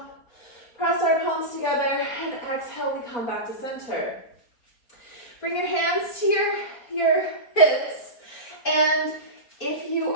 Press our palms together, and exhale, we come back to center. Bring your hands to your hips, and if you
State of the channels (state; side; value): late; right; 4.4 ms